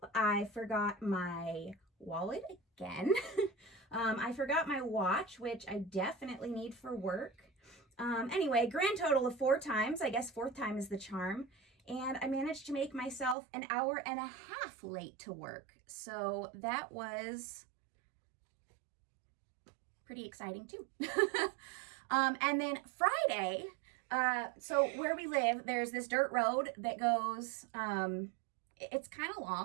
I forgot my wallet again. I forgot my watch, which I definitely need for work. Anyway, grand total of 4 times. I guess 4th time is the charm. And I managed to make myself an hour and a half late to work. So that was pretty exciting too. And then Friday, so where we live, there's this dirt road that goes, it's kind of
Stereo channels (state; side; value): drops out; left; at 13.4 s